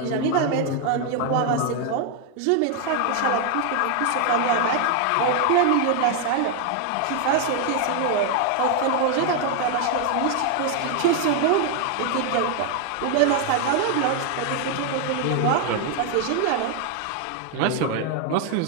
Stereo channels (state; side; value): different; both; correlation 0.01